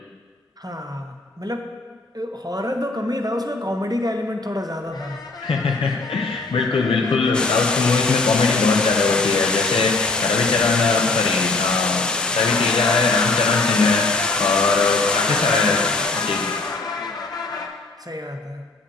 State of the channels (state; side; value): quieter; right; 3.5 dB